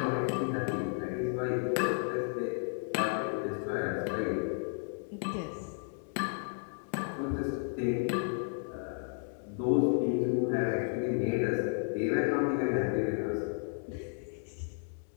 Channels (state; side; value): silent; right; 56 dB below the other